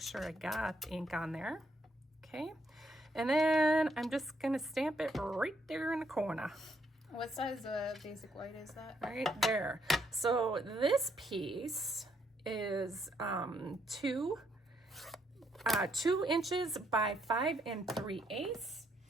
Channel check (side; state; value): both; normal; correlation 0.73